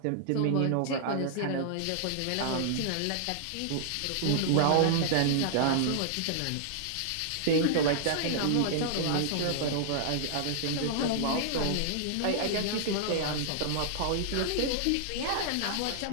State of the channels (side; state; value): both; different; correlation -0.01